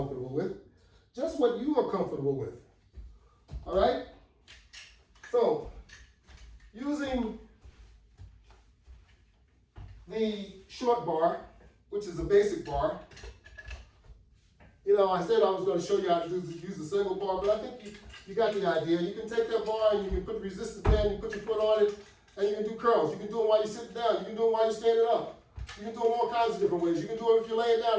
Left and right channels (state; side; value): identical; both; correlation 1.00